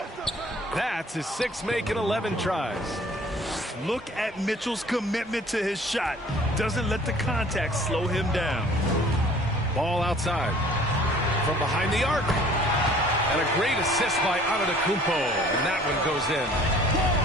That's his 6th make in 11 tries. Look at Mitchell's commitment to his shot. Doesn't let the contact slow him down. Ball outside. From behind the arc. And a great assist by Antetokounmpo. And that one goes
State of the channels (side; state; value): both; normal; correlation 0.52